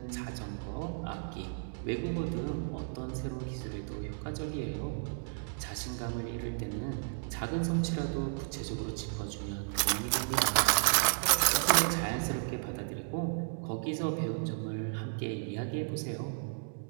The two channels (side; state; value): left; silent; digital silence